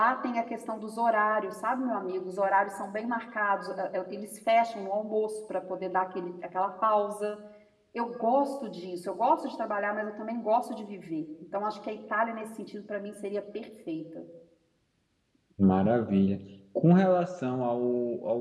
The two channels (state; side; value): identical; both; correlation 1.00